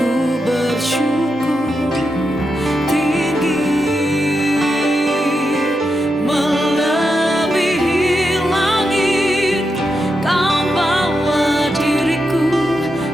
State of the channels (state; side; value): normal; both; correlation 0.86